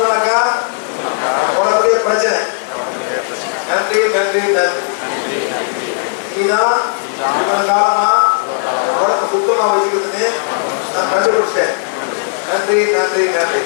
உனக்குடைய பிரச்சனை. நன்றி நன்றி நன்றி. நீதான் இவ்வளவு காலமா உடம்பு சுத்தமா வச்சுக்கிறதுன்னு நான் கண்டுபிடிச்சேன். நன்றி நன்றி நன்றி.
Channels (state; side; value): silent; right; digital silence